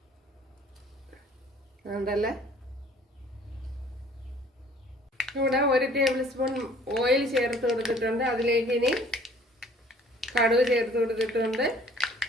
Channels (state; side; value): normal; both; correlation 0.54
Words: ഉണ്ടല്ലേ, ഇവിടെ 1 ടേബിൾ സ്പൂൺ ഓയിൽ ചേർത്ത് കൊടുത്തിട്ടുണ്ട്. അതിലേക്ക് ഇനി കടുക് ചേർത്ത് കൊടുത്തിട്ടുണ്ട്.